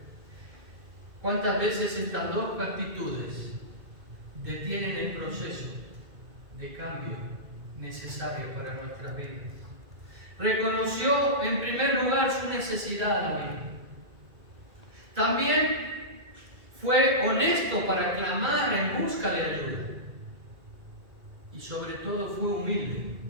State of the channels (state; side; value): late; left; 2.2 ms